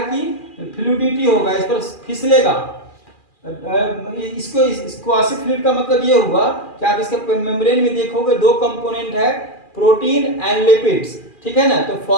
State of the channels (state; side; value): late; right; 2.4 ms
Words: कि फ्लूइडिटी होगा, इस पर फिसलेगा। इसको क्वासी फ्लूइड का मतलब ये हुआ कि आप इसके मेम्ब्रेन में देखोगे दो कंपोनेंट है, प्रोटीन एंड लिपिड्स। ठीक है ना, तो